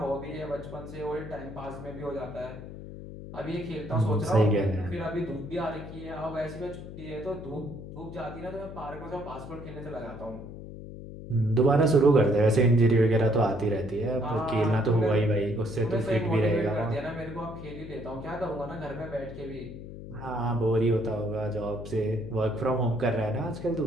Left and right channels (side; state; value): left; noise; hum, 12 dB below the sound